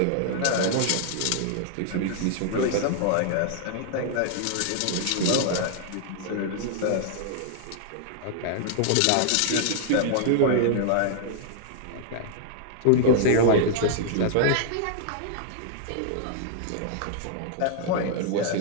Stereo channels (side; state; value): both; different; correlation -0.01